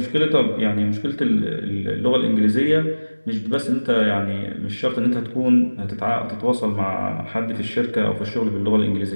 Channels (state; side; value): inverted; both; correlation -1.00